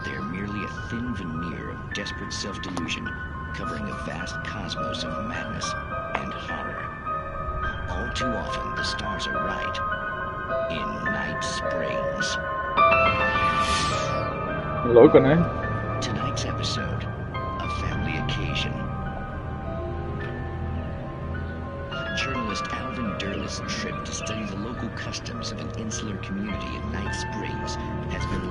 they are merely a thin veneer of desperate self-delusion, covering a vast cosmos of madness and horror. All too often, the stars are right. In Night Springs. Louco, né? Tonight's episode, a family occasion. Journalist Alvin Derlis' trip to study the local customs of an insular community in Night Springs has been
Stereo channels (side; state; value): both; identical; correlation 1.00